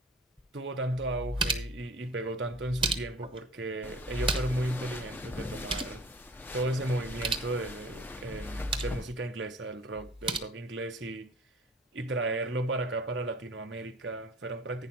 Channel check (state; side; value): normal; both; correlation 0.48